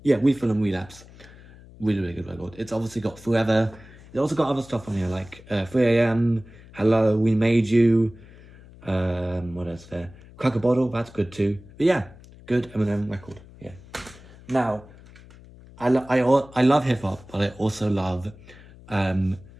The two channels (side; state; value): left; noise; hum, 21 dB below the sound